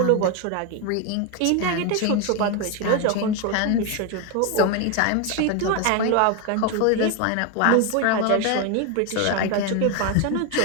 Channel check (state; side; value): different; both; correlation 0.01